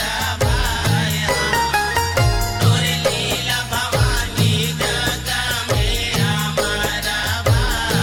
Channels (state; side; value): identical; both; correlation 1.00